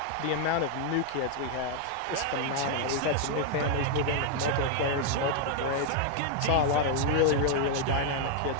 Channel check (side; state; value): both; different; correlation 0.00